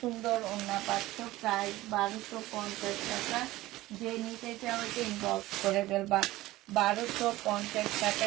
ওড়না পাচ্ছ। প্রাইস 1250 টাকা। যে নিতে চাও এটা ইনবক্স করে ফেলবা। 1250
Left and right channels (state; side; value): quieter; left; 17.4 dB